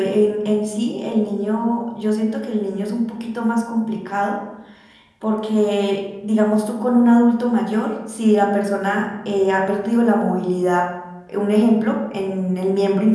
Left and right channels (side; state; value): both; identical; correlation 1.00